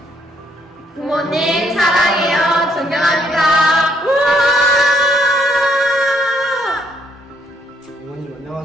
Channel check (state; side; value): normal; both; correlation 0.69